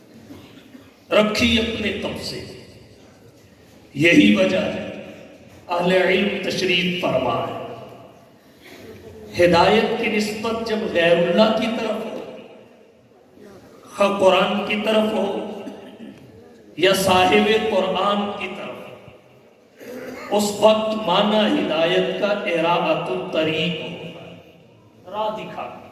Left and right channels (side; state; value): both; identical; correlation 1.00